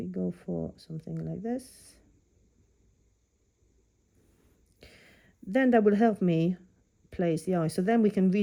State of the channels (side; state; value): both; identical; correlation 1.00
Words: go for something like this, then that will help me place the eye. So then we can